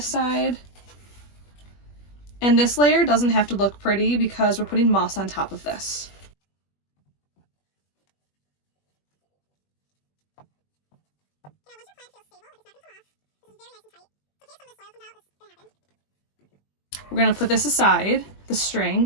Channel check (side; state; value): right; late; 21 ms